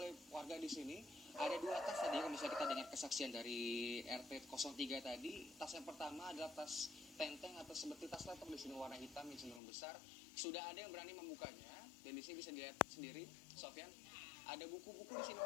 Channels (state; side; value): drops out; right; at 9.6 s